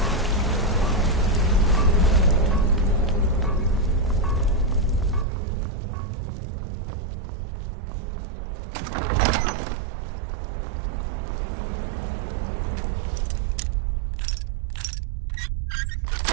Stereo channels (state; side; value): drops out; left; at 5.2 s